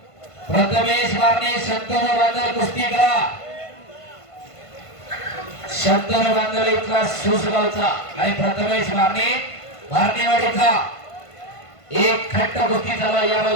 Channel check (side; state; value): right; late; 1.5 ms